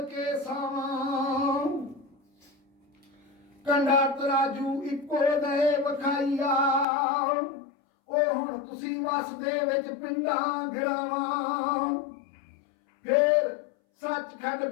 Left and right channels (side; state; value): right; drops out; at 6.9 s